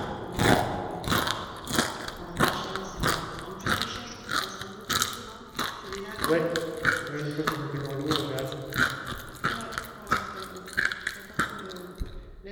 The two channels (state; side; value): identical; both; correlation 1.00